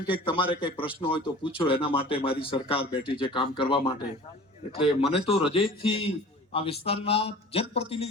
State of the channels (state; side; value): normal; both; correlation 0.43